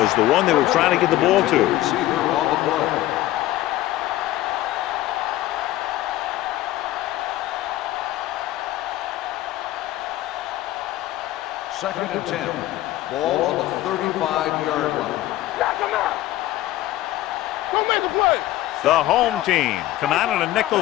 the one they were trying to get the ball to. Receiver on the play. Second and 10. Ball on the 35-yard line. Knock him out. Go make a play. The home team come out in a nickel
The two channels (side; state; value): right; quieter; 15.4 dB